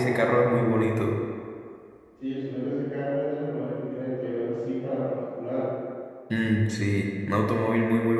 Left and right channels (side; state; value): both; identical; correlation 1.00